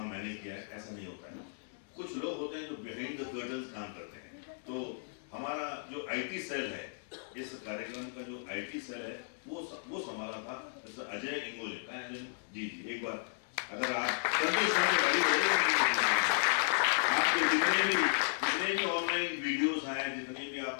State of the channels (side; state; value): right; silent; digital silence